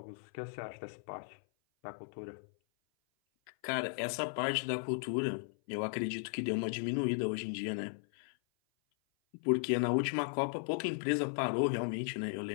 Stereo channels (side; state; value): right; silent; 54 dB below the other